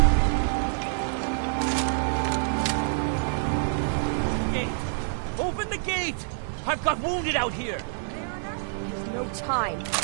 Open the gate! I've got wounded out here! There's no time.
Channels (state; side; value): silent; left; digital silence